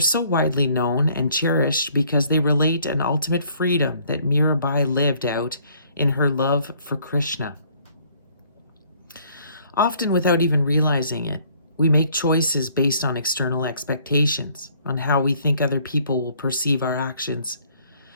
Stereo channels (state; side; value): inverted; both; correlation -0.61